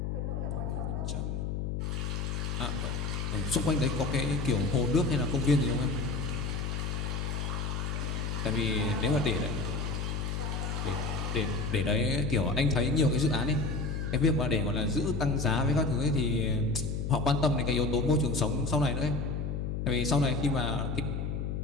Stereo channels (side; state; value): left; noise; hum, 2 dB below the sound